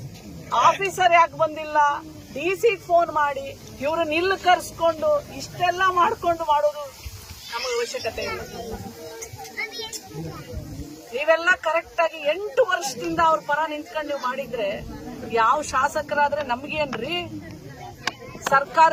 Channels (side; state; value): both; identical; correlation 1.00